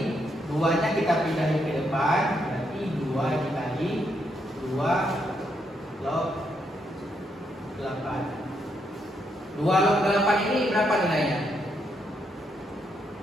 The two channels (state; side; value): normal; both; correlation 0.77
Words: 2-nya kita pindahin ke depan, berarti 2 dikali 2 log 8. 2 log 8 ini berapa nilainya?